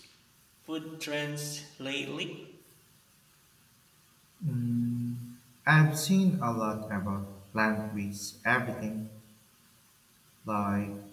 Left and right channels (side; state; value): both; identical; correlation 1.00